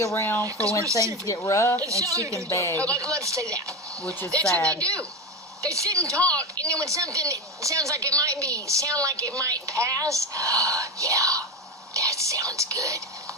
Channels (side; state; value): both; normal; correlation 0.18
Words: around for when things get rough and she can beg. Let's say that. Which is That's sad. what they do. They sit and talk, and then when something sounds like it might pass, yeah, that sounds good.